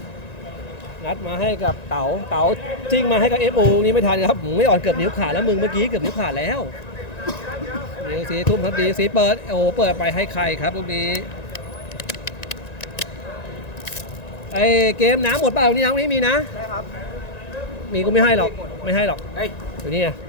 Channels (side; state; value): right; late; 1.9 ms